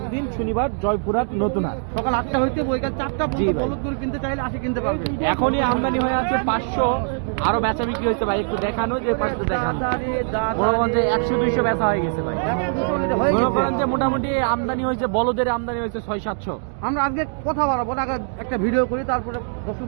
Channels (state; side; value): silent; left; digital silence